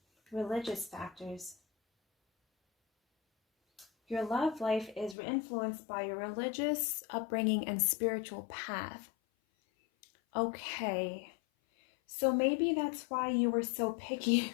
Religious factors. Your love life is influenced by your religious upbringing and spiritual path. Okay. So maybe that's why you were so picky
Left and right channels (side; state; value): right; drops out; at 5.2 s